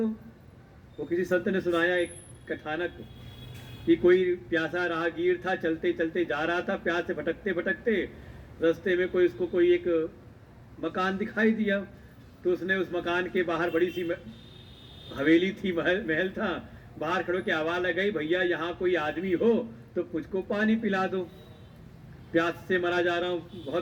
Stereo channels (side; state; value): both; identical; correlation 1.00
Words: वो किसी संत ने सुनाया एक कथानक कि कोई प्यासा राहगीर था, चलते चलते जा रहा था, प्यास से भटकते भटकते रास्ते में कोई एक मकान दिखाई दिया। तो उसने उस मकान के बाहर बड़ी सी हवेली थी, महल था, बाहर खड़ो के आवाज लगाई, भैया यहाँ कोई आदमी हो तो मुझको पानी पिला दो, प्यास से मरा जा रहा हूँ,